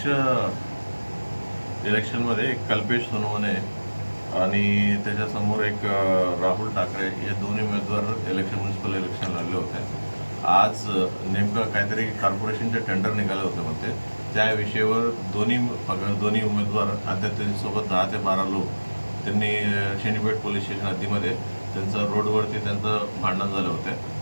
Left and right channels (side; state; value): both; inverted; correlation -1.00